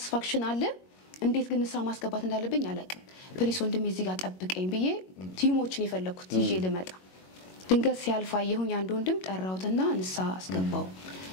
አለ እንዴት ግን ንሳ ማስገባት እንዳለብኝ አላውቅም ፕሊስ ወንድሜ እዚህ ጋር ጠብቀኝ ብዬ ቲሞችን የፈለኩት ይዤ ልመጣ ድንገት ሲያልፋ የሁን አንድ ወንድም ጠራውትና ንሳ አስገባው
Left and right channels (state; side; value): late; right; 22 ms